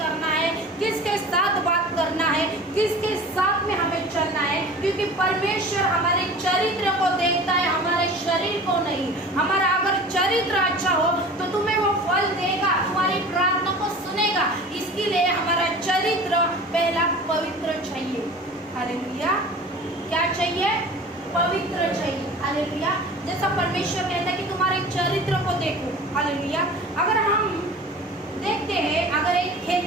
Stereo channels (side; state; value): both; normal; correlation 0.40